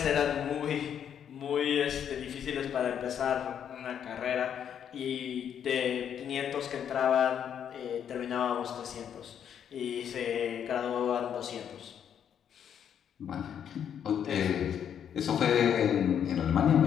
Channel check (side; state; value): right; quieter; 8.8 dB